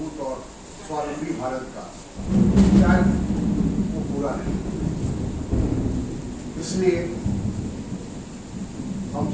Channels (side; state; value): both; identical; correlation 1.00